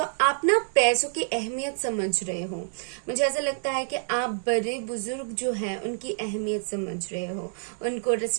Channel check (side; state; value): left; silent; 60 dB below the other